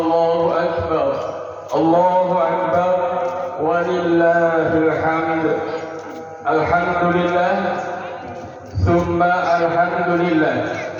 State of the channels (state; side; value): identical; both; correlation 1.00